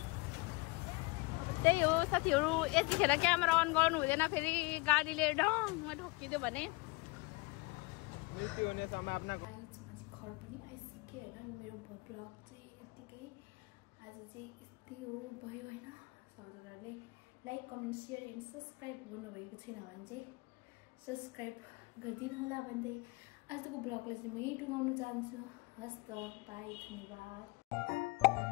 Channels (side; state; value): right; quieter; 26.2 dB